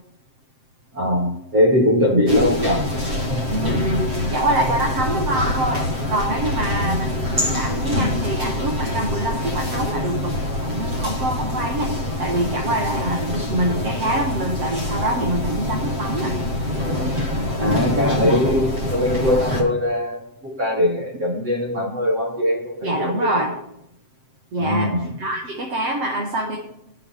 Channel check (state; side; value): late; left; 7.7 ms